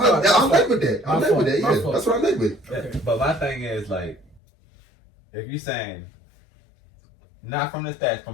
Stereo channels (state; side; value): drops out; right; at 4.4 s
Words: led with that. I led with that. Yeah, that's what I led with. Okay. But my thing is like, if you're saying not from the stats,